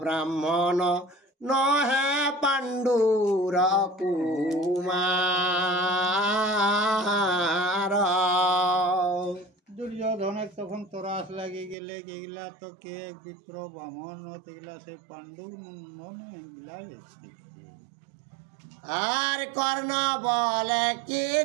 ব্রাহ্মণ নহে পাণ্ডুর কুমার। দুর্যোধনের তখন তরাস লাগি গেলে এগুলা তো কে বিপ্র ব্রাহ্মণ এগুলা সে পাণ্ডু এগুলা আর কর্ণ বলে কি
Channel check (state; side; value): drops out; left; at 11.8 s